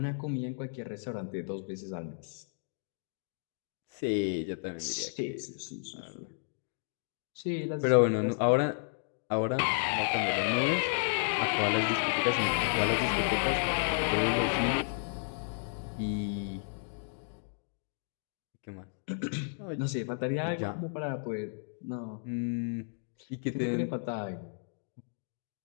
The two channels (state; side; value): silent; right; digital silence